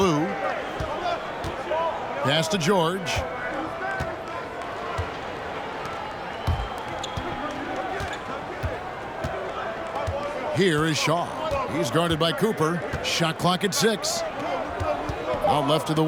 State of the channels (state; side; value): identical; both; correlation 1.00